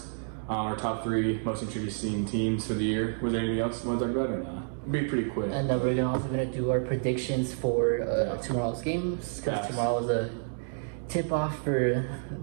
our top 3 most interesting teams for the year. Was there anything else you want to talk about or not? Be pretty quick. And then we're also going to do our predictions for tomorrow's games, because tomorrow is a tip-off for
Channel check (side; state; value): left; silent; digital silence